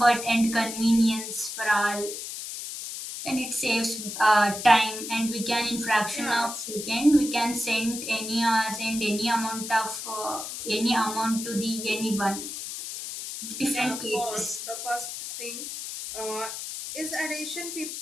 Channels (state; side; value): noise; left; hiss, 7 dB below the sound